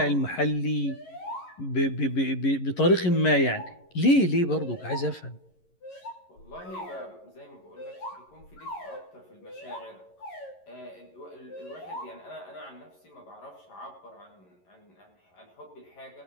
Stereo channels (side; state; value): right; late; 11 ms